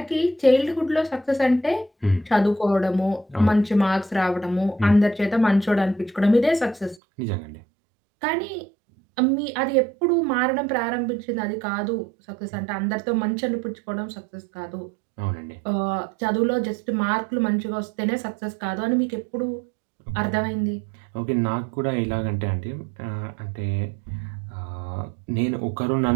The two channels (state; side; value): drops out; left; at 7.0 s